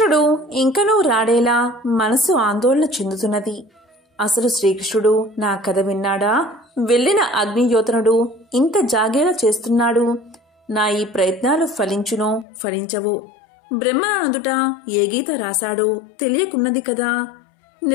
ఇంకనూ రాడేలా మనసు ఆందోళన చెందుతున్నది. అసలు శ్రీకృష్ణుడు నా కథ విన్నాడా? వెళ్లిన అగ్నియోతనుడు ఇంత జాగేలా చేస్తున్నాడు. నా ఈ ప్రయత్నాలు ఫలించునో ఫలించవో? బ్రహ్మనందుట ఏ గీత రాశాడో తెలియకున్నది కదా.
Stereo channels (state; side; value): drops out; right; at 12.5 s